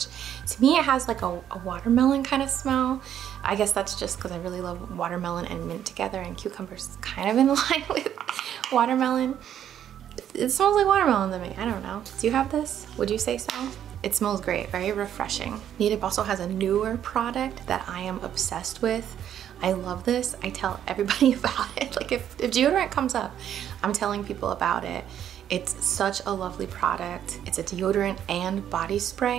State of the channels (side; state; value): left; quieter; 10.1 dB